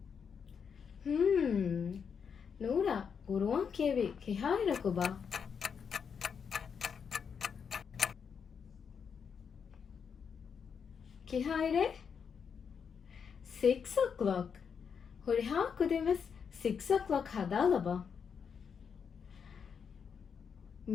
ನೂರ ಗುರುವಾನ್ ಕೇವಿ ಕಿಹಾಯಿರಕುಬಾ ಕಿಹಾಯಿರೆ 6 o'clock ಹುರಿಹಾಕುದಿವೆಸ್ 6 o'clock ಹದಾಲಬ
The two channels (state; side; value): quieter; right; 6.7 dB